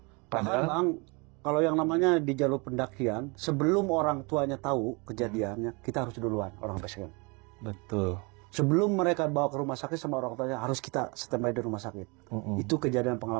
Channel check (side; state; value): left; quieter; 29.6 dB